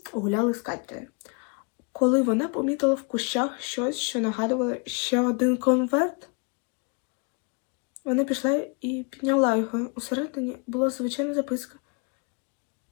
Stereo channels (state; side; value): quieter; right; 33.4 dB